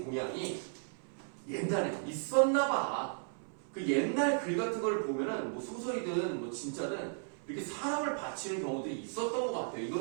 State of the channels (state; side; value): silent; left; 54 dB below the other